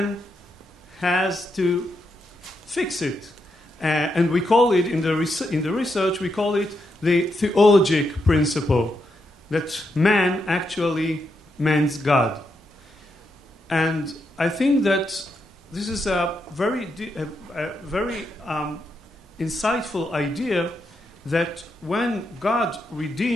has to fix it. And we call it, in the research, we call it the theologic principle, that man actually mends God. And I think that this is a very insightful idea, that when God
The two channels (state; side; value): normal; both; correlation 0.82